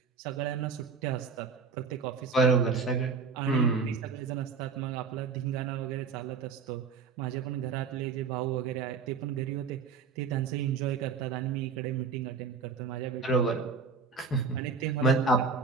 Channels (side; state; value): left; quieter; 5.2 dB